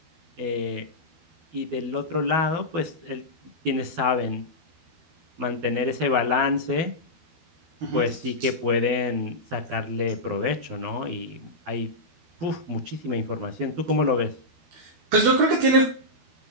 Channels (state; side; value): late; left; 12 ms